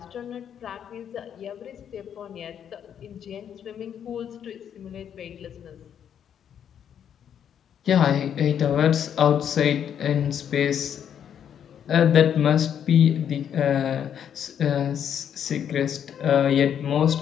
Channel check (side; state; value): right; quieter; 8.8 dB